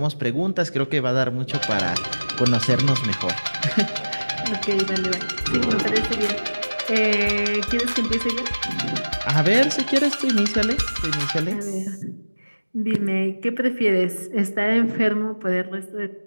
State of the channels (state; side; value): inverted; both; correlation -1.00